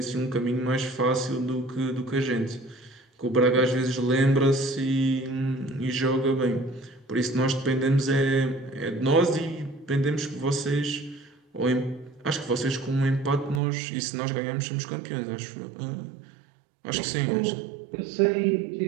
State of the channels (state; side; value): drops out; left; at 13.6 s